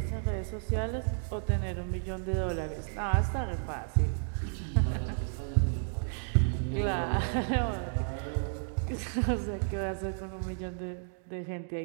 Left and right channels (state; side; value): silent; left; digital silence